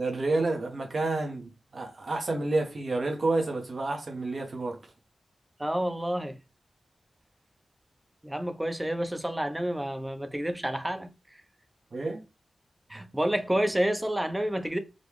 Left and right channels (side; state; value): both; normal; correlation 0.96